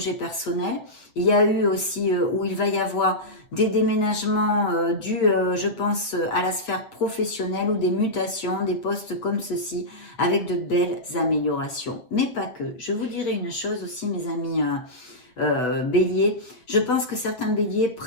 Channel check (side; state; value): right; late; 8.1 ms